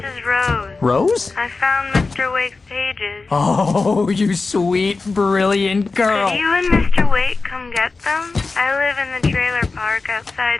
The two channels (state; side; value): quieter; right; 3.9 dB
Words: Rose. Rose? I found Mr. Wake's pages. Oh, you sweet, brilliant girl. Could you and Mr. Wake come get them? I live in the trailer park